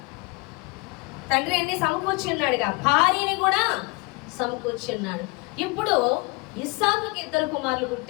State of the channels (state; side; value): quieter; right; 27.5 dB